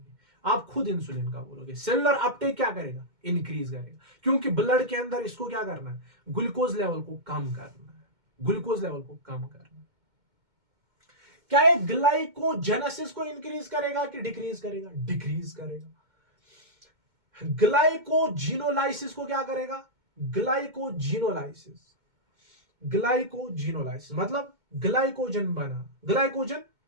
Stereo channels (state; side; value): late; left; 2.2 ms